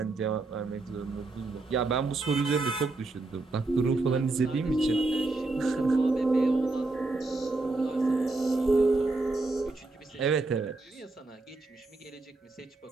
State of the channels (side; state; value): left; quieter; 3.3 dB